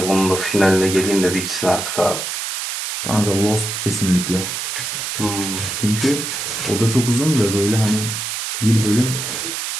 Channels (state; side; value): noise; right; hiss, 4 dB below the sound